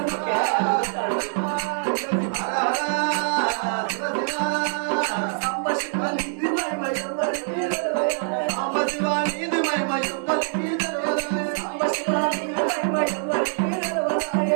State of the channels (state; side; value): silent; left; digital silence